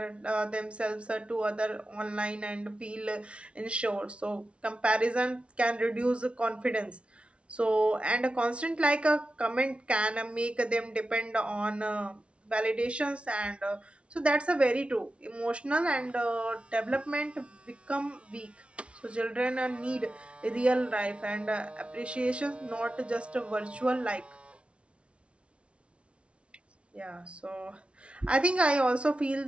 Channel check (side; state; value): left; late; 0.060 ms